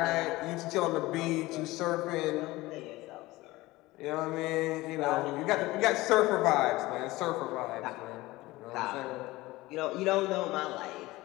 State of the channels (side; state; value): right; quieter; 19.4 dB